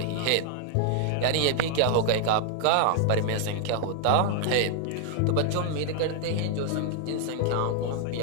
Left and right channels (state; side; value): different; both; correlation 0.00